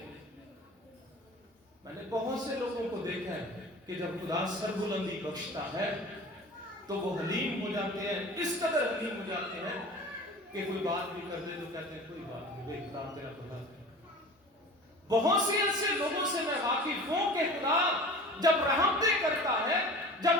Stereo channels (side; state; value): both; normal; correlation 0.39